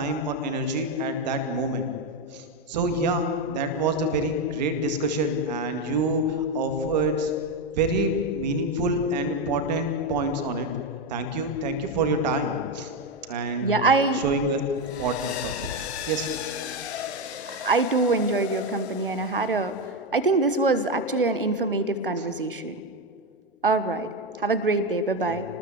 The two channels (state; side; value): normal; both; correlation 0.10